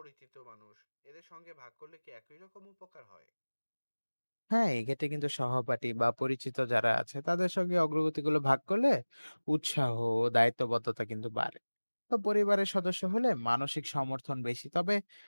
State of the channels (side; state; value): both; inverted; correlation -1.00